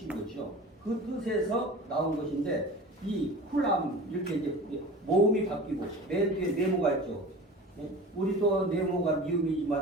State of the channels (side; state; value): both; normal; correlation 0.37